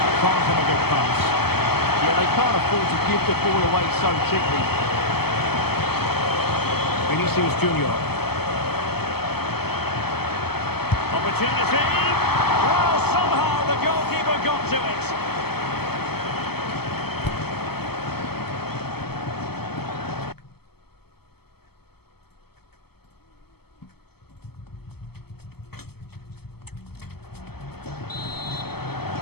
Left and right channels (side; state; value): right; late; 0.96 ms